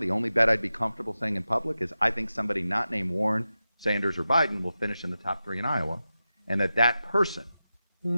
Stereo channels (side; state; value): both; inverted; correlation -0.93